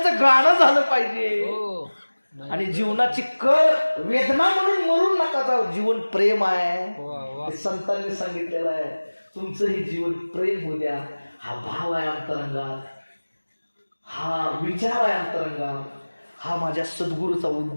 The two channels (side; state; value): both; inverted; correlation -1.00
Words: गाणं झालं पाहिजे. आणि जीवनाची कळ वेदना म्हणून मरून नका जाऊ. जीवन प्रेम आहे, संतांनी सांगितलेलं आहे. तुमचंही जीवन प्रेम होऊ द्या. हा भाव आहे अंतरंगात, हा विचार आहे अंतरंगात, हा माझ्या सद्गुरूचा